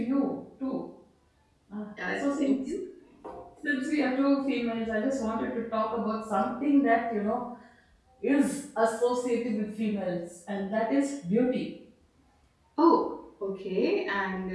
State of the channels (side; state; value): both; identical; correlation 1.00